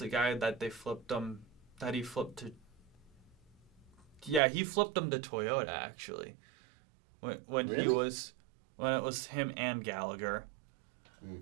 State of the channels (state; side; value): drops out; left; at 4.4 s